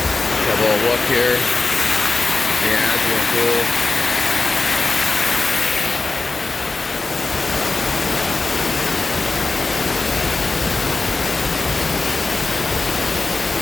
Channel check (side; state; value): right; quieter; 3.7 dB